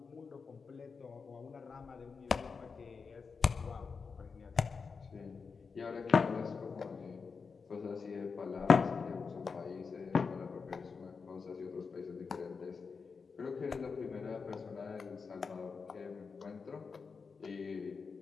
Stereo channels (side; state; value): right; quieter; 5.2 dB